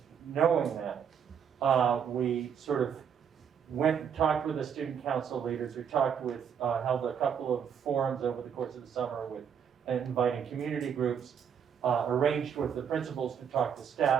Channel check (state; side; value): quieter; left; 7.8 dB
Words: knowing that, we sort of went and talked with the student council leaders. We talked with, held a couple of forums over the course of the summer with inviting community groups, arranged with the principals to talk to